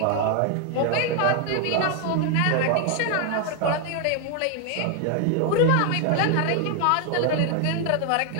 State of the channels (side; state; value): both; different; correlation 0.01